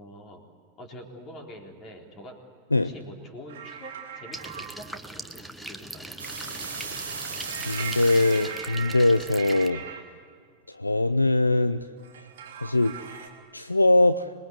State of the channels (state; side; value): inverted; both; correlation -0.90